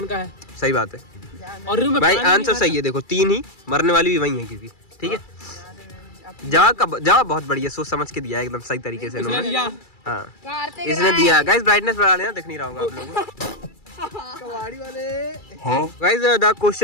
का है? सही बात है और रूम में भाई, पानी नहीं आंसर सही है। देखो 3 ही, मरने वाली भी वही है क्योंकि, ठीक है। जवाब बहुत बढ़िया, सोच समझ के दिया है, एकदम सही तरीके से इसने इन्होंने। दिया। हाँ कार्तिक इसने राय। दिया। गाइस ब्राइटनेस बढ़ा लेना, दिख नहीं रहा होगा आप लोगों को। कबाड़ी वाले। Guys the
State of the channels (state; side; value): late; right; 2.3 ms